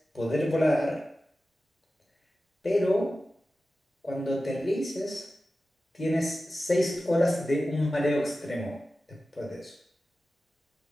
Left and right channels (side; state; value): both; normal; correlation 0.94